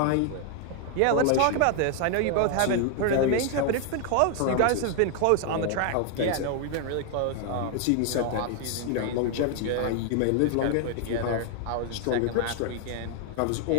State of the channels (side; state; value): both; different; correlation 0.00